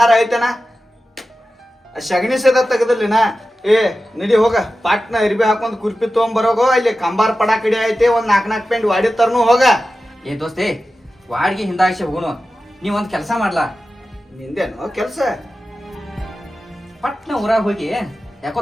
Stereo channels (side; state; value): both; normal; correlation 0.93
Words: ಐತನ? ಶಗಣಿ ಸದ ತೆಗದಲ್ಲಿನ. ಏ ನಡಿ ಹೋಗ, ಪಾಟ್ನ ಅರಿಬಿ ಹಾಕೊಂಡ್ ಕುರ್ಪಿ ತೊಗೊಂಬರೋಗೋ. ಅಲ್ಲಿ ಕಂಬಾರ್ ಪಡ ಕಡಿ ಐತೆ, ಒಂದ್ 4 ಪೆಂಟ್ ವಾಡಿ ತರ್ನು ಹೋಗ. ಏ ದೋಸ್ತೆ, ವಾಡ್ಗಿ ಹಿಂದಾಗಿಸಿ ಹೋಗೋನು. ನೀವೊಂದ್ ಕೆಲಸ ಮಾಡ್ಲಾ? ನಿಂದೇನು ಕೆಲ್ಸ? ಪಟ್ನ ಊರಾಗ ಹೋಗಿ, ಯಾಕೋ